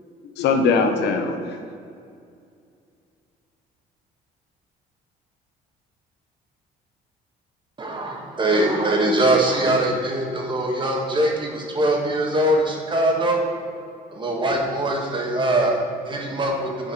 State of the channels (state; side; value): normal; both; correlation 0.40